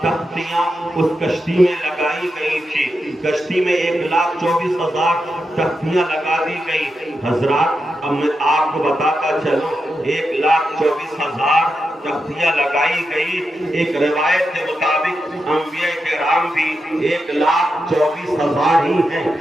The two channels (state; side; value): normal; both; correlation 0.88